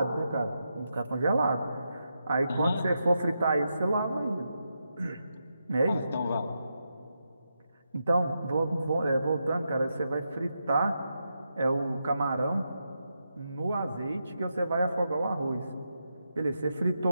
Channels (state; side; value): inverted; both; correlation -0.85